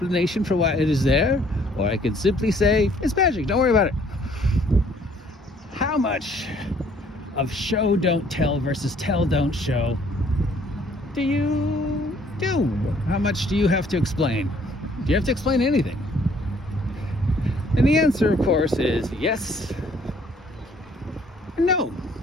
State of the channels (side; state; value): both; normal; correlation 0.61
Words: for why it is there, or I could simply say, it's magic, don't worry about it. How much of show don't tell versus tell don't show do you do? How much do you have to explain? Do you have to explain anything? And the answer, of course, is yes and no.